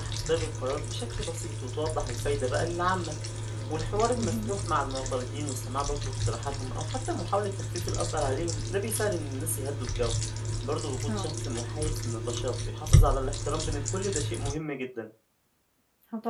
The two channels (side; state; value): both; identical; correlation 1.00